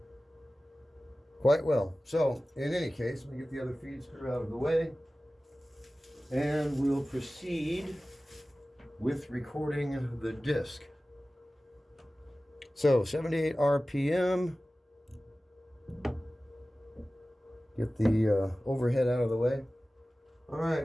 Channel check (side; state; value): both; normal; correlation 0.96